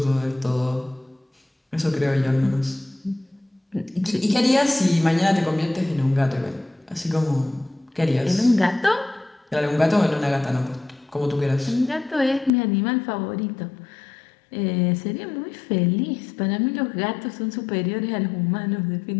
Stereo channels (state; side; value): drops out; right; at 12.5 s